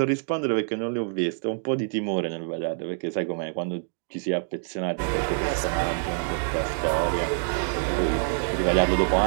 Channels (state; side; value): silent; left; digital silence